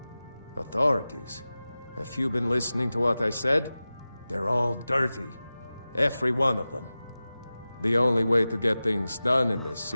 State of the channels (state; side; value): inverted; both; correlation -0.96